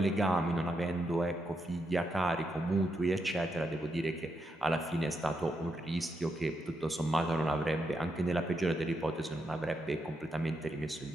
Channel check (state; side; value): normal; both; correlation 0.82